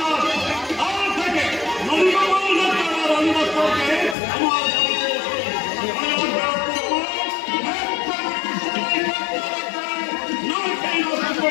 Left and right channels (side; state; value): right; drops out; at 4.2 s